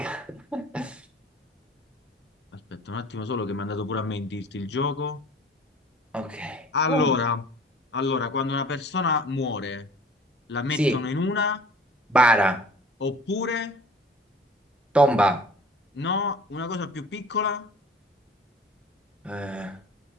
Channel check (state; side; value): normal; both; correlation 0.46